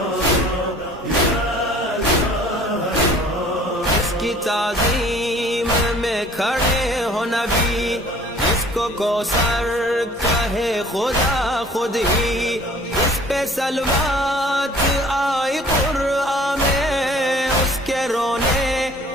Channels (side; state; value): both; normal; correlation 0.52